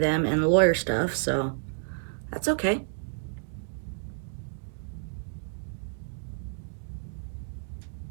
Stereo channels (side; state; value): left; silent; digital silence